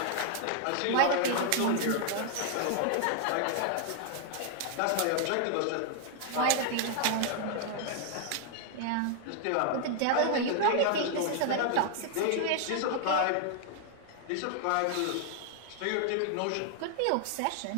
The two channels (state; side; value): different; both; correlation 0.00